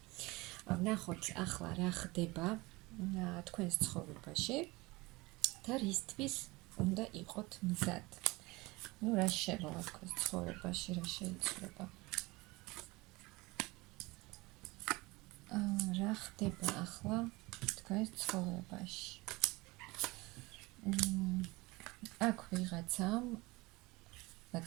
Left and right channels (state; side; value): quieter; left; 22.7 dB